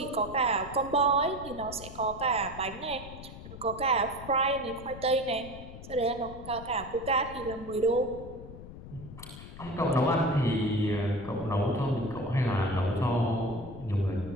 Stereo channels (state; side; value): noise; left; rumble, 14 dB below the sound